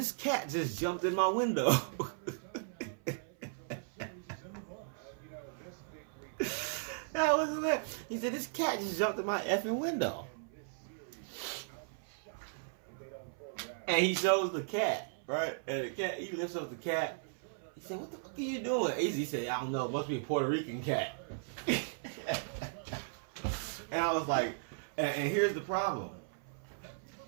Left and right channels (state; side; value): silent; left; 53 dB below the other